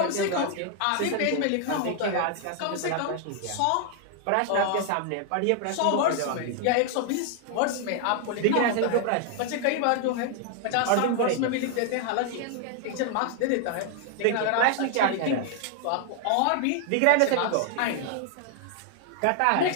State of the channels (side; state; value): both; different; correlation 0.00